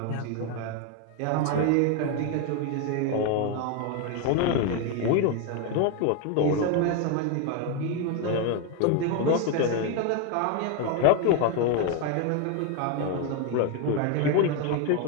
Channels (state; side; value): different; both; correlation 0.02